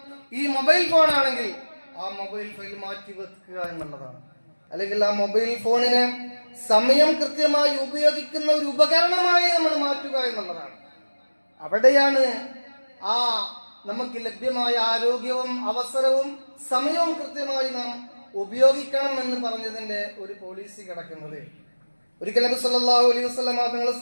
ഈ മൊബൈൽ ഫോൺ ആണെങ്കിൽ ആ മൊബൈൽ ഫോൺ മാറ്റി വെക്കുക എന്നുള്ളതാണ്. അല്ലെങ്കിൽ ആ മൊബൈൽ ഫോണിനെ സമയം കൃത്യമായി ഉപയോഗിക്കുന്ന ഒരു ഉപകരണമായി നമ്മൾ മാറ്റുക എന്നുള്ളതാണ്. അവിടെയാണ് ആ നമുക്ക് ലഭ്യമായ ആരോഗ്യവും അവസരവും സമയവും കൃത്യമായി നാം ഉപയോഗിക്കണം എന്ന് പറഞ്ഞതിന്റെ ഒരു പോളിസി കിടക്കുന്നത്. ഒരിക്കൽ നബി സല്ലല്ലാഹു അലൈഹി വസല്ലം തങ്ങൾ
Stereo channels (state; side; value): inverted; both; correlation -1.00